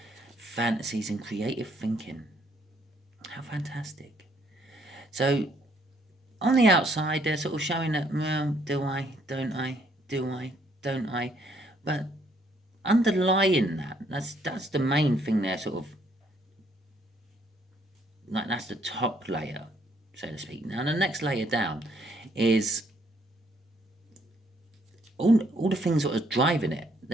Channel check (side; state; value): both; normal; correlation 0.68